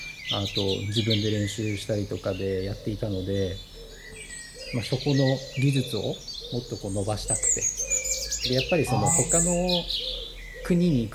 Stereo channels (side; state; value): both; identical; correlation 1.00